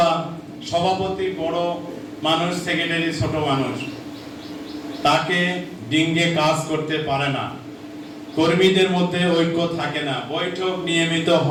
সভাপতি বড় মানুষ, সেক্রেটারি ছোট মানুষ, তাকে ডিঙ্গে কাজ করতে পারে না, কর্মীদের মধ্যে ঐক্য থাকে না, বৈঠক নিয়মিত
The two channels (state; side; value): identical; both; correlation 1.00